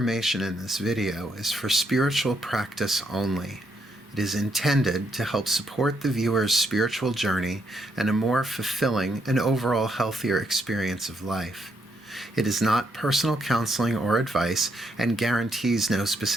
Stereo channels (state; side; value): normal; both; correlation 0.77